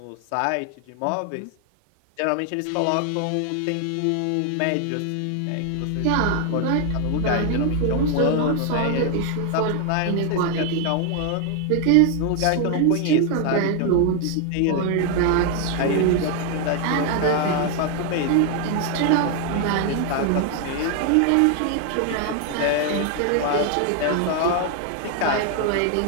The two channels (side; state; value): both; different; correlation 0.00